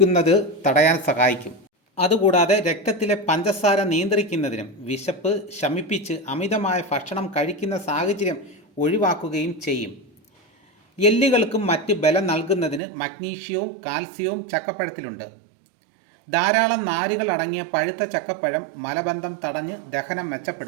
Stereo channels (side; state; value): left; drops out; at 12.8 s